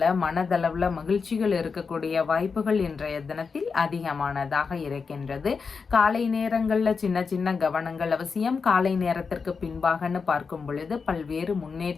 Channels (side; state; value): right; quieter; 5.2 dB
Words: மனதளவுல மகிழ்ச்சிகள் இருக்கக்கூடிய வாய்ப்புகள் இன்றைய தினத்தில் அதிகமானதாக இருக்கின்றது. காலை நேரங்கள்ல சின்ன சின்ன கவனங்கள் அவசியம். காலை நேரத்திற்கு பின்பாகன்னு பார்க்கும் பொழுது பல்வேறு